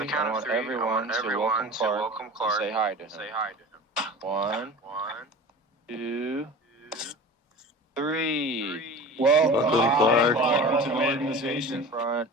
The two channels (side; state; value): both; normal; correlation 0.36